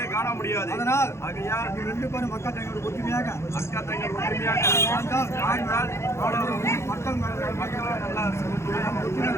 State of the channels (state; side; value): late; right; 0.13 ms